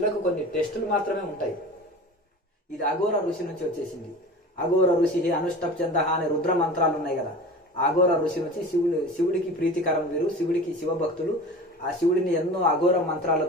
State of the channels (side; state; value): both; normal; correlation 0.36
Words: కొన్ని టెస్టులు మాత్రమే ఉంటాయి. ఇది అఘోర ఋషి నుంచి వచ్చేసింది. అఘోర ఋషి అనుష్టప్ చంద అనే రుద్ర మంత్రాలు ఉన్నాయి కదా. అఘోర ఋషి నుంచి శివుడికి ప్రీతికరం వీరు, శివుడికి శివభక్తులు. ఆ శివుడిని ఎన్నో అఘోర